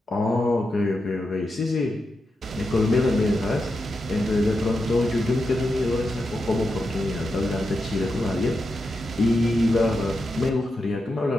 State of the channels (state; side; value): normal; both; correlation 0.87